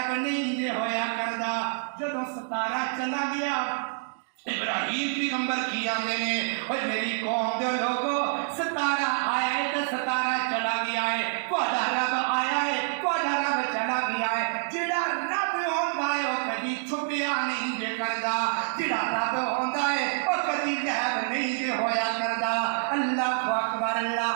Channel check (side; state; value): left; silent; 57 dB below the other